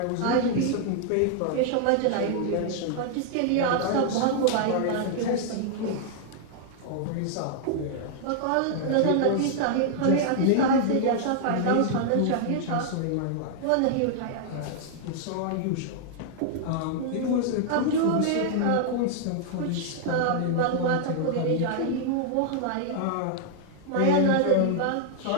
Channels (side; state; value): both; different; correlation -0.01